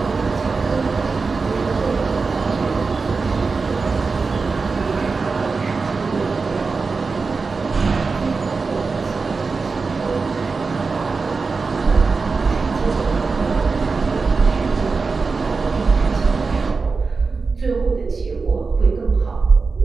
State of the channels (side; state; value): left; quieter; 4.4 dB